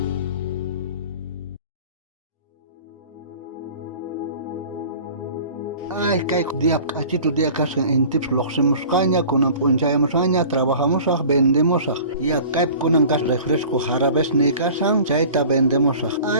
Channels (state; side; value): inverted; both; correlation -0.44